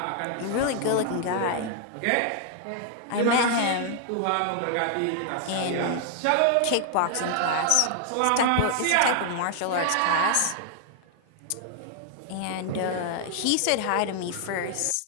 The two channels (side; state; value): both; different; correlation 0.00